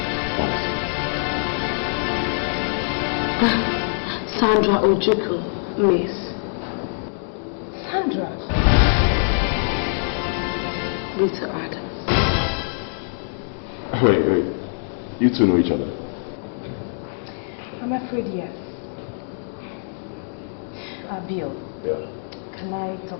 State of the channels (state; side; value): silent; right; digital silence